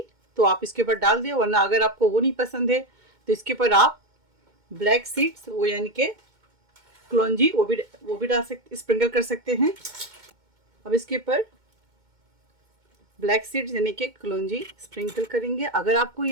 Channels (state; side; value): late; left; 2.2 ms